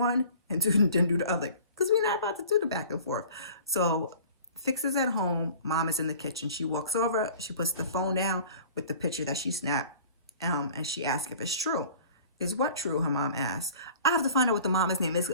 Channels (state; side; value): inverted; both; correlation -0.46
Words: and then do the other because we're not about to do the back and forth. So Fiks is at home. Mom is in the kitchen. She walks over. She puts the phone down with the picture that she snapped and she asks if it's true. Is what true? Her mom asks. I have to find out what the mom's name is.